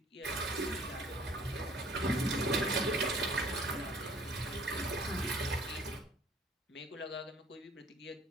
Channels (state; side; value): normal; both; correlation 0.55